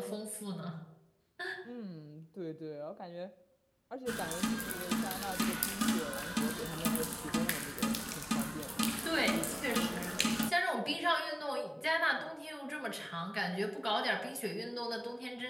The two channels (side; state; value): both; identical; correlation 1.00